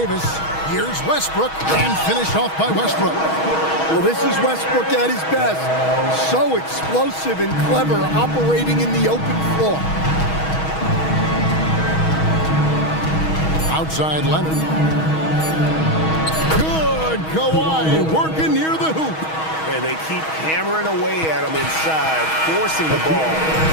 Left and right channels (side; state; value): right; late; 6.3 ms